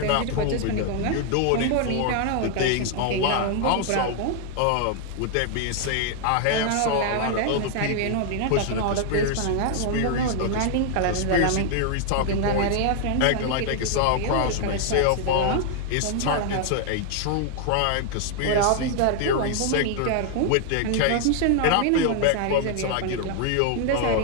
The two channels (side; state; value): both; different; correlation 0.00